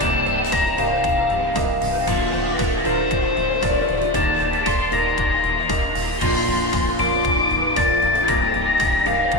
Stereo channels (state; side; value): late; right; 1.1 ms